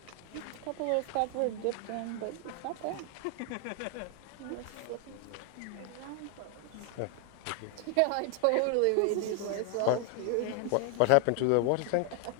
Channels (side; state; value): both; different; correlation 0.00